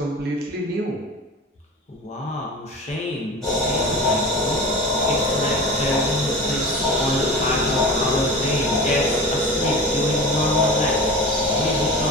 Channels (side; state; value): both; normal; correlation 0.33